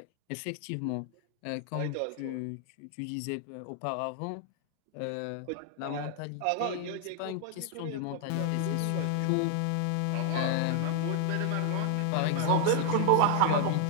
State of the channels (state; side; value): different; both; correlation 0.00